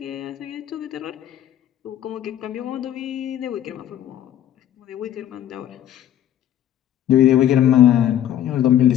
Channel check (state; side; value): quieter; right; 11.1 dB